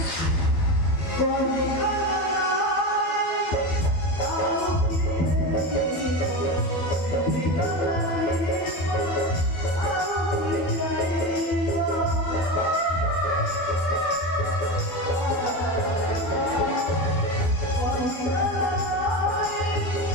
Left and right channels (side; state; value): right; late; 12 ms